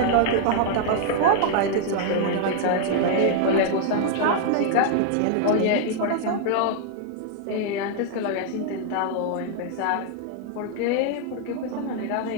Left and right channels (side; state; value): both; different; correlation 0.00